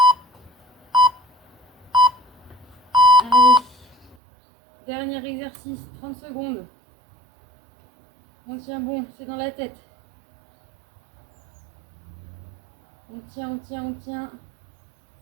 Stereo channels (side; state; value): left; drops out; at 4.2 s